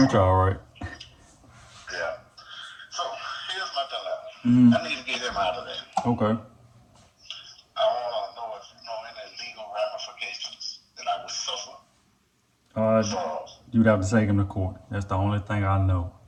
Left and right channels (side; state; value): both; identical; correlation 1.00